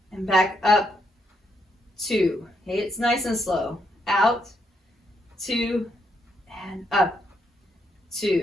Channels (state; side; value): normal; both; correlation 0.77